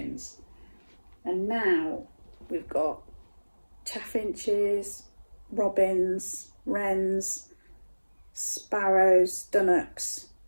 And now we've got chaffinches, robins, wrens, sparrows, dunnocks,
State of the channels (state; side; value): inverted; both; correlation -1.00